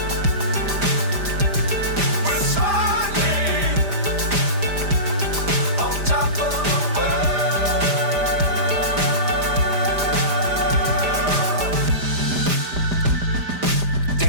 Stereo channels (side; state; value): left; late; 5.0 ms